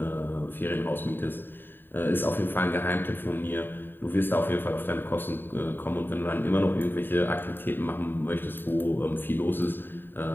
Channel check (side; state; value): right; late; 0.095 ms